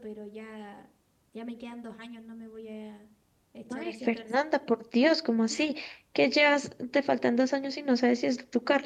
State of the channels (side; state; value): both; identical; correlation 1.00